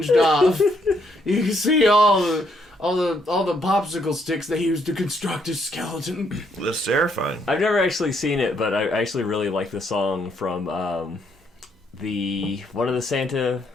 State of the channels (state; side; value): normal; both; correlation 0.72